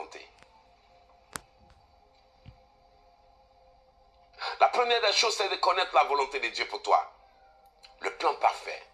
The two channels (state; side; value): identical; both; correlation 1.00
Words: La première des choses, c'est de connaître la volonté de Dieu pour toi. Le plan parfait,